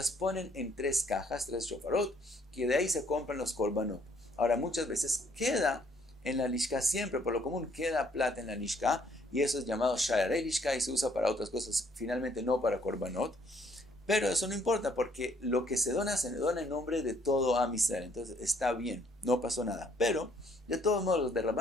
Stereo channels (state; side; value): normal; both; correlation 0.65